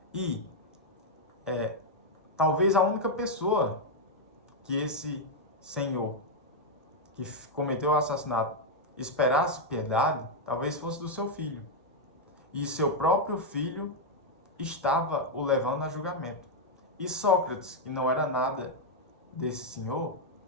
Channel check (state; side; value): normal; both; correlation -0.01